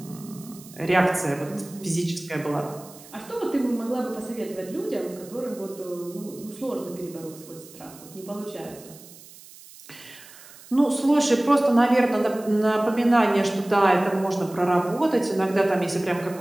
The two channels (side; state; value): right; noise; hiss, 20 dB below the sound